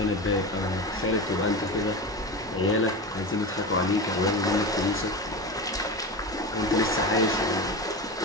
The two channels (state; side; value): normal; both; correlation 0.24